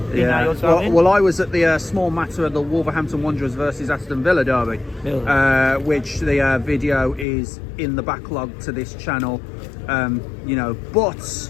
Yeah. Well, I was at the small matter of the Wolverhampton Wanderers versus Aston Villa derby, really? Which the video is in the backlog to this channel. You know, but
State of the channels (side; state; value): right; drops out; at 7.2 s